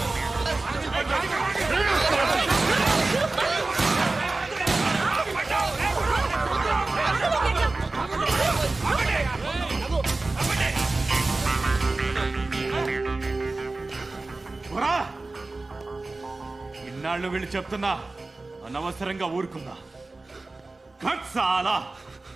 ఇన్నాళ్ళు వీళ్ళు చెప్తున్నా అనవసరంగా ఊరుకున్నా. చాలా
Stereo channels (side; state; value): left; quieter; 3.3 dB